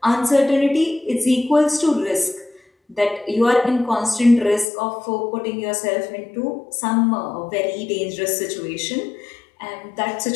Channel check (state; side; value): drops out; right; at 4.7 s